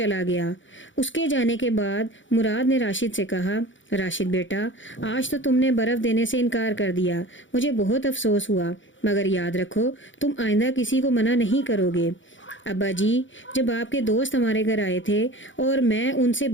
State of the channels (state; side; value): late; right; 0.56 ms